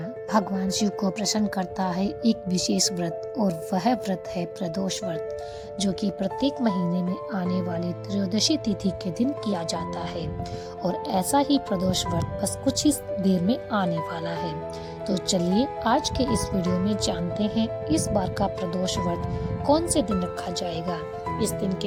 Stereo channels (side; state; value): both; identical; correlation 1.00